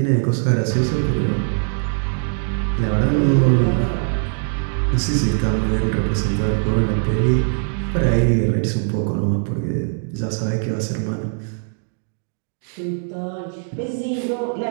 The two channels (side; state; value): left; silent; 65 dB below the other